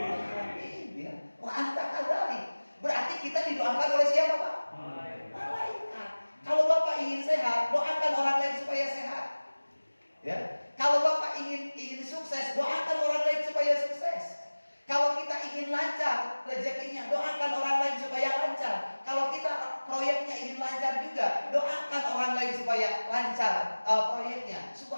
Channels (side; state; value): both; inverted; correlation -1.00